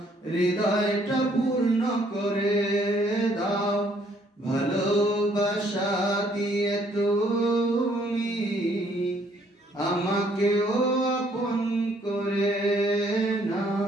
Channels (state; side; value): normal; both; correlation 0.65